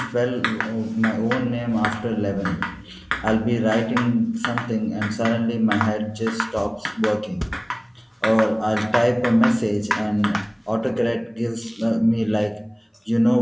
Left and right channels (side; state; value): both; identical; correlation 1.00